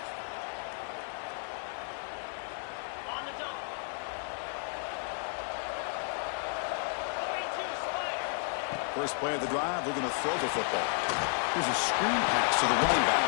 First play of the drive, we're going to throw the football. Here's a screen pass to the running back.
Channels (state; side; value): silent; right; 55 dB below the other